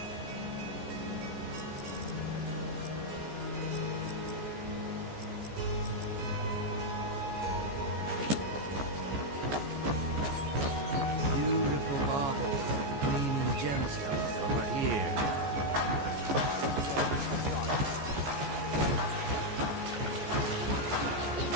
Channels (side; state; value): left; late; 14 ms